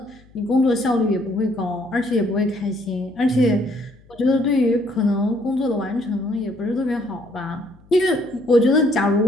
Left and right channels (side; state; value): left; noise; hum, 27 dB below the sound